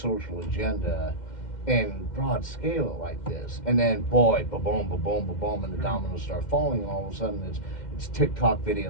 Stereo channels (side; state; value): right; late; 2.1 ms